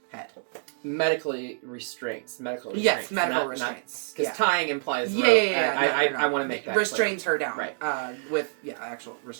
head. Medically restraints. Yes, medical restraints. Because tying implies rope. Yeah. I want to make that restrains clear. her down. Right. With actual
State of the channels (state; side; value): silent; left; 58 dB below the other